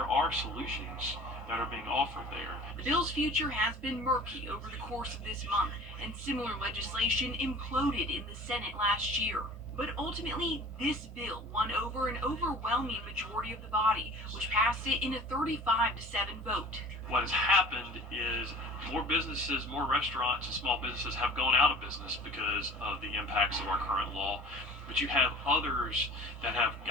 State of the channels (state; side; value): normal; both; correlation 0.44